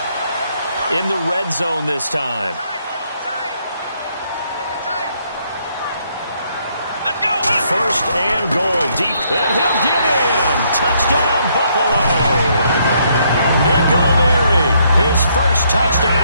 In the red zone this time. First and goal deep, and he'll get in. Touchdown, Buffalo. Nick O'Leary, his first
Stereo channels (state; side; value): inverted; both; correlation -0.71